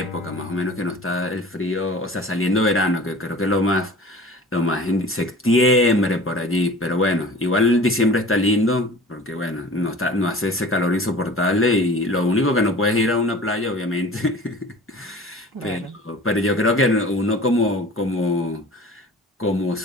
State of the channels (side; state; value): both; normal; correlation 0.43